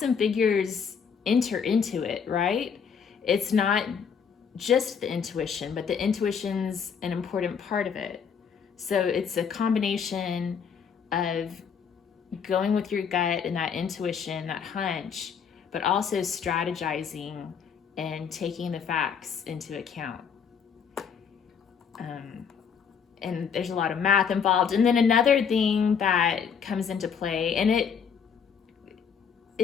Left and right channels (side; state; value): right; quieter; 6.8 dB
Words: and figures enter into it, right? It's not just the intuition, but the intuition's an important part of it. So it's a combination of going with your gut and that intuition, that hunch, but also strategizing and taking the facts into account. And there's a lot of math involved. And then another thing that comes into play, and